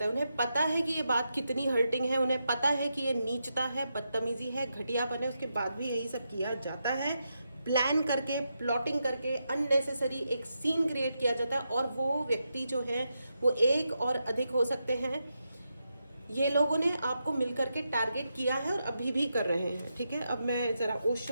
है। उन्हें पता है कि ये बात कितनी हर्टिंग है, उन्हें पता है कि ये नीचता है, बदतमीजी है, घटियापन है, उसके बाद भी यही सब किया जाता है। प्लान करके, प्लॉटिंग करके, अननेसेसरी एक सीन क्रिएट किया जाता है, और वो व्यक्ति जो है वो एक और अधिक हो सकते हैं। ये लोगों ने आपको मिलकर के टारगेट किया है और अभी भी कर रहे हैं। ठीक है, अब मैं ज़रा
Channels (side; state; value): both; inverted; correlation -0.85